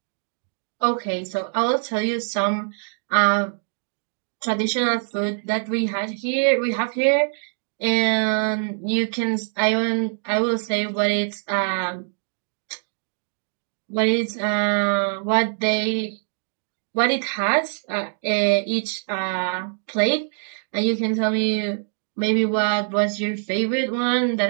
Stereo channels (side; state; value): left; silent; digital silence